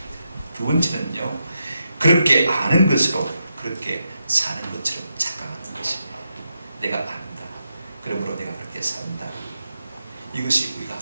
두 번째는요, 그렇게 아는 것으로 그렇게 사는 것처럼 착각하는 것입니다. 내가 안다. 그러므로 내가 그렇게 산다. 이것이 우리가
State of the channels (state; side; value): inverted; both; correlation -0.84